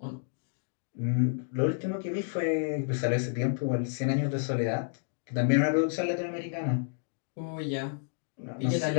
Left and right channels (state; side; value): silent; right; digital silence